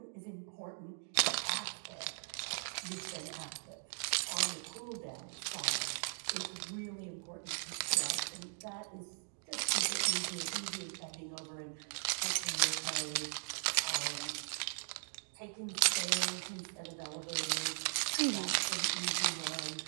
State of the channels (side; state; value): left; silent; digital silence